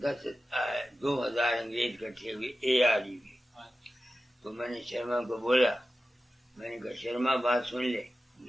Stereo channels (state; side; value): normal; both; correlation 0.93